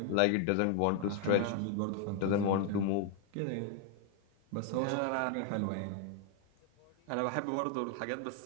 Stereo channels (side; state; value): both; different; correlation 0.00